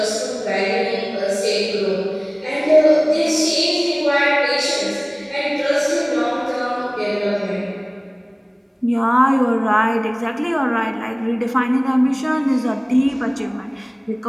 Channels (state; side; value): identical; both; correlation 1.00